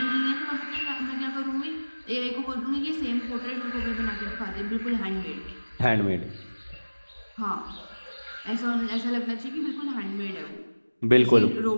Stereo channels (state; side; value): inverted; both; correlation -1.00